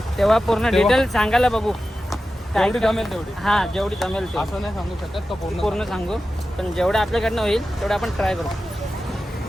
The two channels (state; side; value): normal; both; correlation 0.93